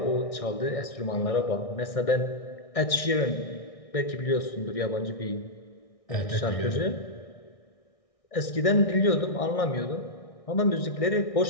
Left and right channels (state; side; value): late; right; 1.6 ms